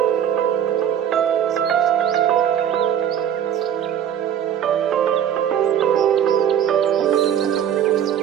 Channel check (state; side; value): quieter; left; 9.4 dB